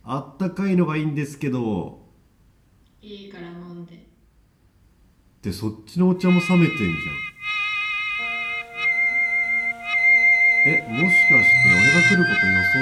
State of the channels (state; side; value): identical; both; correlation 1.00